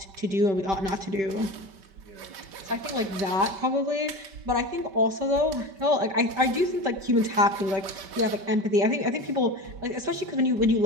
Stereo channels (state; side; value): late; left; 5.2 ms